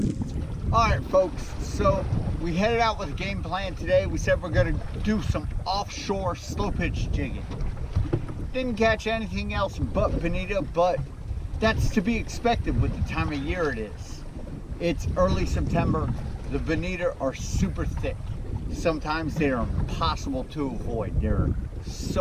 All right, folks, so we headed out with a game plan today. We said we're going to do some offshore slow pitch jigging. Didn't catch anything else but bonito, but that's to be expected with the time of year it is. It's early September. The bonito are super thick. Sometimes they are impossible to avoid. They're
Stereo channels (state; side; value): identical; both; correlation 1.00